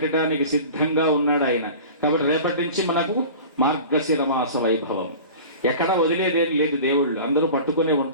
సిద్ధంగా ఉన్నాడు ఆయన. కాబట్టి రేపటి నుంచి మనకు మార్గశిర మాస వైభవం. ఎక్కడ వదిలేదేం లేదు, దేవుళ్ళు అందరూ పట్టుకునే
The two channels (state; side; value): inverted; both; correlation -0.38